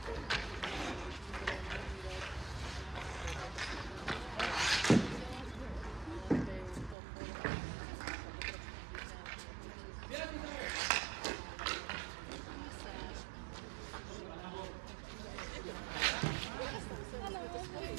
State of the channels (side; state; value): left; drops out; at 7.0 s